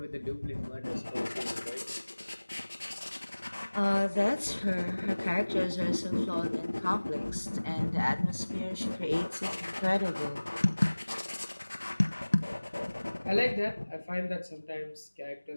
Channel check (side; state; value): both; inverted; correlation -1.00